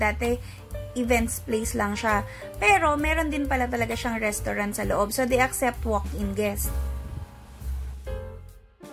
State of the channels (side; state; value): both; identical; correlation 1.00